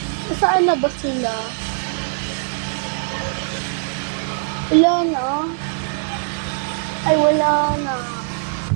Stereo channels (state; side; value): silent; left; 56 dB below the other